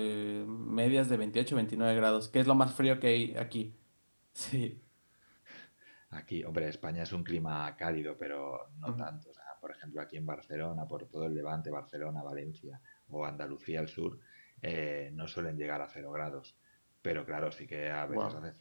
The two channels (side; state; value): both; inverted; correlation -1.00